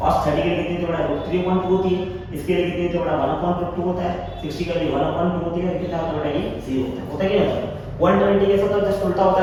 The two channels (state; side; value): identical; both; correlation 1.00